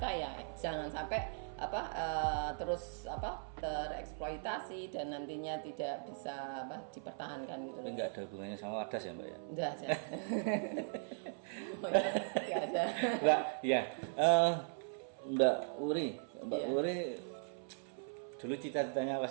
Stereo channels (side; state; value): left; silent; 52 dB below the other